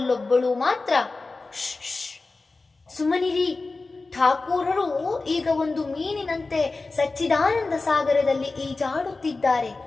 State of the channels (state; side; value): quieter; right; 3.6 dB